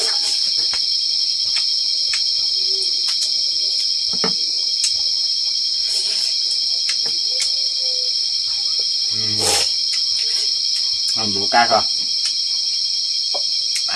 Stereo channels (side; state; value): both; identical; correlation 1.00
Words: Ăn bố cá rồi.